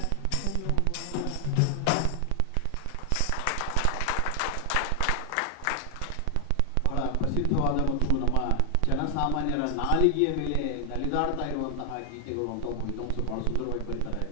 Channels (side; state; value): both; different; correlation 0.00